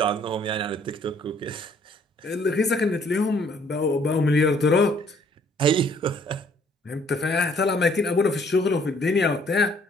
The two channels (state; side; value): normal; both; correlation 0.62